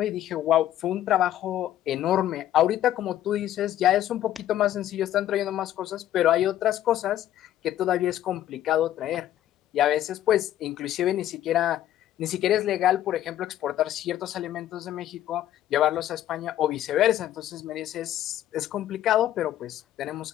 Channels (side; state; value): right; quieter; 12.3 dB